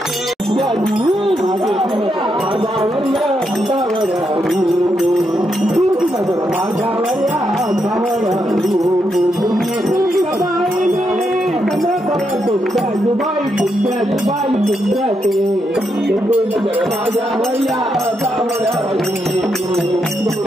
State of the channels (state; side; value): normal; both; correlation 0.81